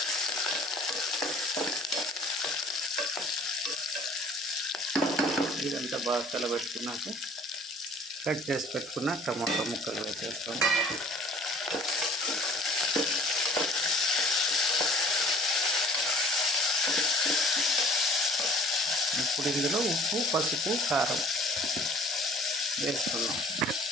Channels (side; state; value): both; normal; correlation 0.50